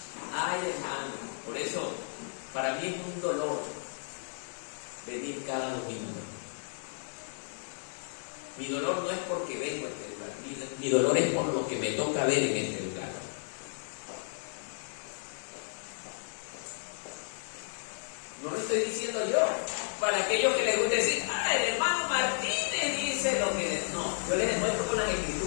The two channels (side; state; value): right; silent; digital silence